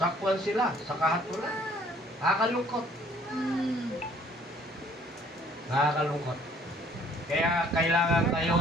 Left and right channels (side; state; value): both; normal; correlation 0.59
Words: sila sa kahatulan. Nakakalungkot. Nakakalungkot. Kaya kailangan kayo